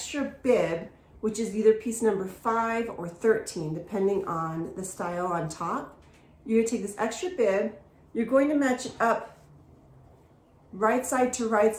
bib, which is either piece number 5 or 13, depending on the style on top. You're going to take this extra bib, you're going to match it up right side to right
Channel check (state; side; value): identical; both; correlation 1.00